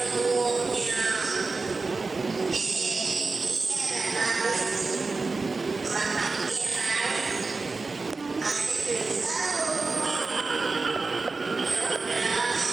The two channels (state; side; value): quieter; left; 3.9 dB